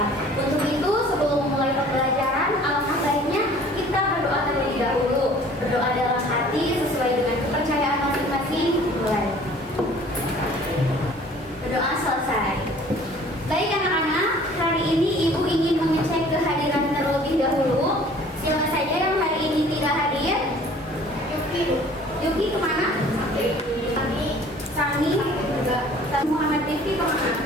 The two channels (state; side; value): normal; both; correlation 0.51